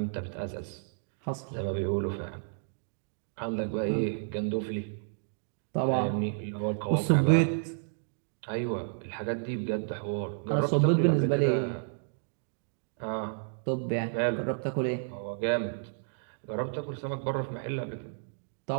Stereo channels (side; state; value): left; silent; digital silence